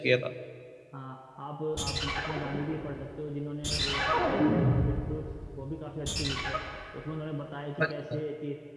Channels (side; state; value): both; identical; correlation 1.00